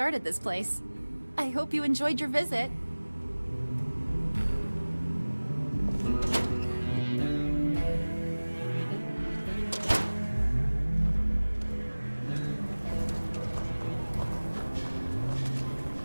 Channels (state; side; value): inverted; both; correlation -1.00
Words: this place. I hope you enjoyed your visit.